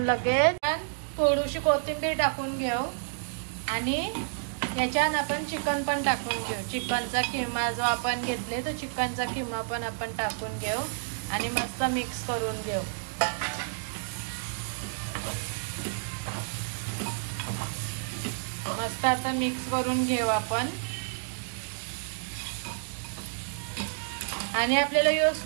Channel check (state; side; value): silent; left; digital silence